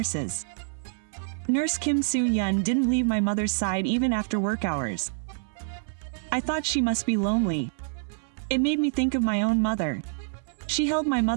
Nurse Kim Soo-yeon didn't leave my mother's side even after work hours. I thought she must be lonely. It made me think of my own mother. She held my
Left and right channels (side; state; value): left; silent; 60 dB below the other